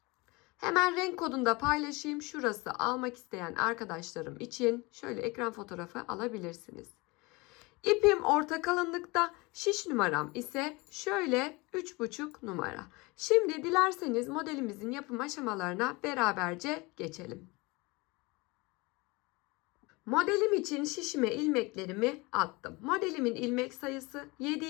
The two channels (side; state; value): right; quieter; 24.9 dB